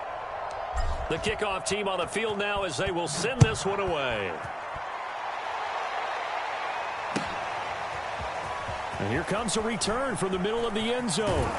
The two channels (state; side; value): identical; both; correlation 1.00